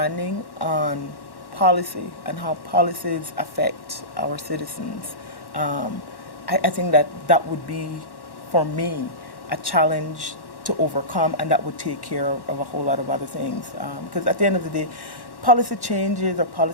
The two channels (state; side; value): late; right; 1.1 ms